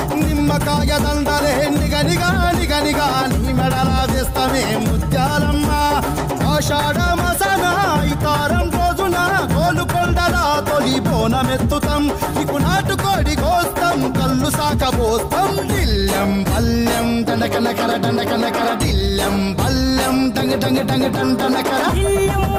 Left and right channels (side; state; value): both; identical; correlation 1.00